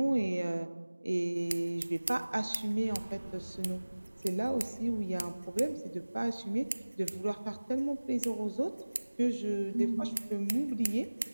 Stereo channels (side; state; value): both; inverted; correlation -1.00